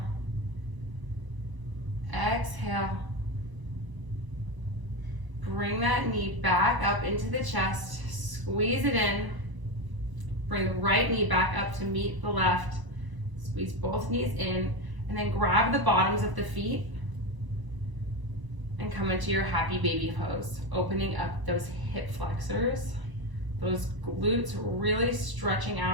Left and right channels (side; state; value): left; late; 1.0 ms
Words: Exhale. Bring that knee back up into the chest. Squeeze it in. Bring the right knee back up to meet the left. Squeeze both knees in, and then grab the bottoms of the feet and come into your happy baby pose, opening up those hip flexors, those glutes, really stretching